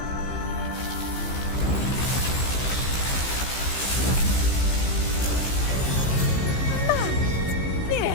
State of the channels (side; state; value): right; late; 15 ms